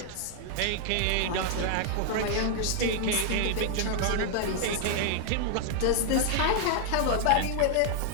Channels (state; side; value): different; both; correlation 0.00